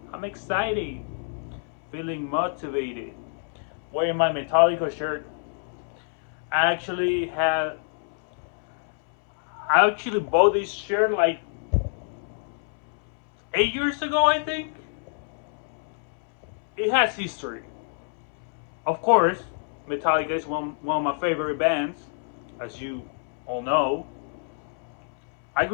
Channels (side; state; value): right; silent; 60 dB below the other